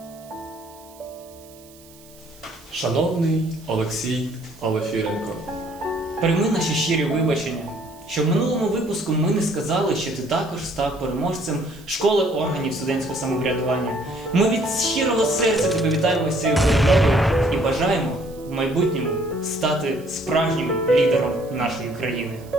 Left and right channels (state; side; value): noise; right; hiss, 24 dB below the sound